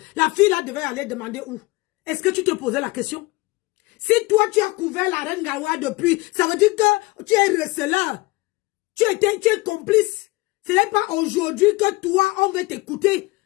la fille là devait aller demander où? Est-ce que tu te posais la question? Si toi, tu as couvert la reine Galoise depuis, ça veut dire que tu es receleur. Tu es complice. Ce n'est pas aujourd'hui que toi, on veut t'écouter.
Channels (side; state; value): right; quieter; 22.2 dB